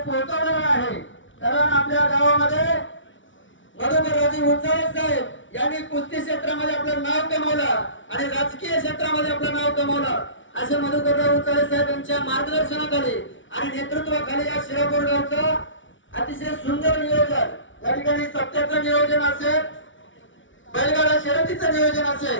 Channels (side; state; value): right; late; 0.56 ms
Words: पोहोचवलेलं आहे. कारण आपल्या गावामध्ये मधुकरराजे उंचाळे साहेब यांनी कुस्ती क्षेत्रामध्ये आपलं नाव कमवलं आणि राजकीय क्षेत्रामध्ये आपलं नाव कमवलं. असे मधुकरराव उंचाळे साहेब यांच्या मार्गदर्शनाखाली आणि नेतृत्वाखाली या शिरापूर गावचं अतिशय सुंदर नियोजन, या ठिकाणी सत्याचं नियोजन असेल, बैलगाडा शर्यतीचं नियोजन